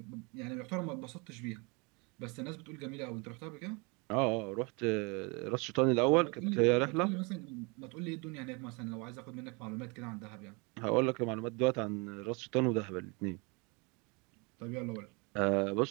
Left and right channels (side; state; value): left; quieter; 30.0 dB